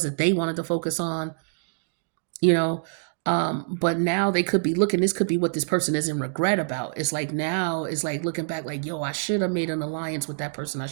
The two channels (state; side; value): silent; left; digital silence